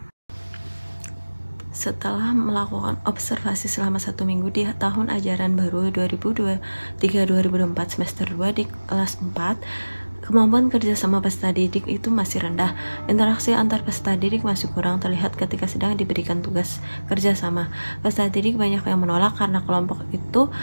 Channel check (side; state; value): both; inverted; correlation -1.00